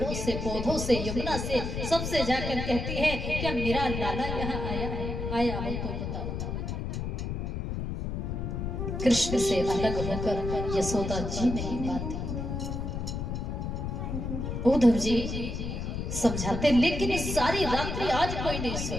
से, पौधों से, यमुना से, सबसे जाकर कहती है, क्या मेरा लाला यहाँ आया है? आया हो तो बताओ। कृष्ण से अलग होकर यशोदा जी नहीं पाती। उद्धव जी समझाते, लेकिन इस सारी रात्रि आज कोई नहीं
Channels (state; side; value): noise; left; rumble, 3 dB below the sound